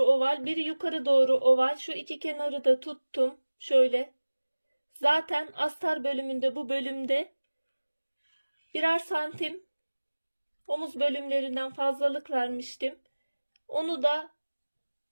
oval, biri yukarı doğru oval. Şu iki kenarı da tuttum. Şöyle. Zaten astar bölümünde, bu bölümde birer santim omuz bölümlerinden fazlalık vermiştim. Onu da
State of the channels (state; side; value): inverted; both; correlation -1.00